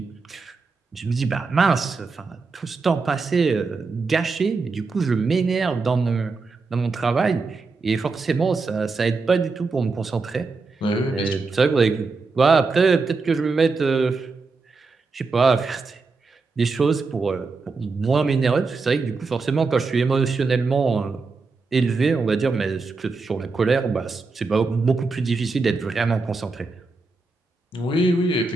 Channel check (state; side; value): quieter; left; 4.2 dB